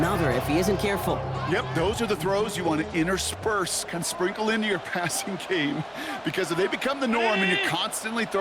if he isn't careful. Yep, those are the throws you want to intersperse, kind of sprinkle into your passing game, because if they become the norm and you're constantly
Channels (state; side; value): identical; both; correlation 1.00